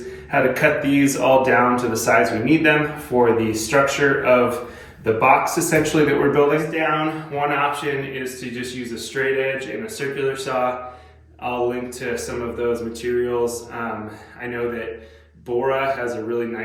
how to cut these all down to the size we need them for the structure of the box essentially that we're building. Down, one option is to just use a straight edge and a circular saw. I'll link to some of those materials. I know that Bora has a really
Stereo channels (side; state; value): both; identical; correlation 1.00